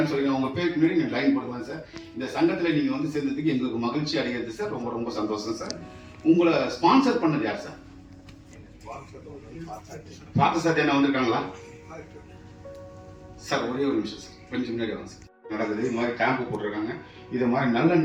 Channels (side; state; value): both; identical; correlation 1.00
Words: சொல்லி உங்க பேருக்கு முன்னாடி நீங்க லைன் போடுவாங்க சார். இந்த சங்கத்துல நீங்க வந்து சேர்ந்ததுக்கு எங்களுக்கு மகிழ்ச்சி அடைகிறது சார். ரொம்ப ரொம்ப சந்தோஷம் சார். உங்களை ஸ்பான்சர் பண்ணது யார் சார்? பார்த்த சார் என்ன வந்திருக்காங்களா சார்? ஒரே ஒரு நிமிஷம் சார், கொஞ்சம் முன்னாடி வாங்க சார். நடக்குது இது மாதிரி கேம்ப் போட்டிருக்காங்க. இது மாதிரி